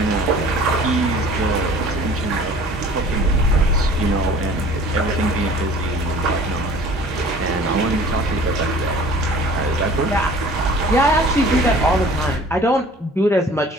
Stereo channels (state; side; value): normal; both; correlation 0.48